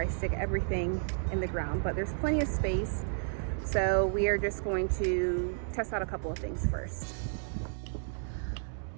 stick everything in the ground. But there's plenty of space, so we are just going to test out a couple of things first.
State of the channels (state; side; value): silent; left; digital silence